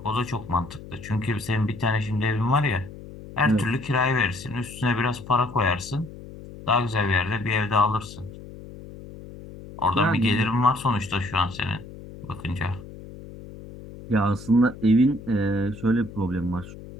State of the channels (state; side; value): noise; left; hum, 15 dB below the sound